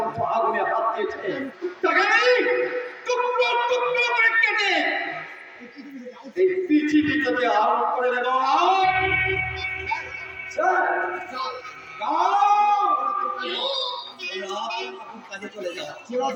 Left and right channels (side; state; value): both; identical; correlation 1.00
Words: আগুনে হাত দিয়েছে তাকে আমি টুকরো টুকরো করে কেটে এই পৃথিবীতে আরোপ করে দেব